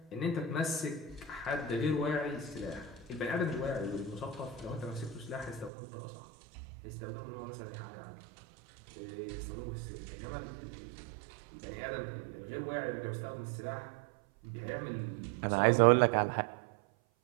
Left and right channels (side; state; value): left; drops out; at 5.7 s